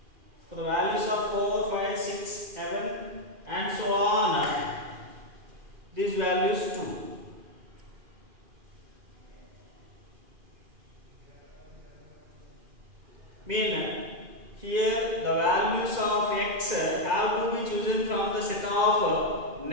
for the values of 4, 5, 6, 7 and so on, these values 2. Mean here the values of x have to be chosen from the set of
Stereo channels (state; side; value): late; left; 2.4 ms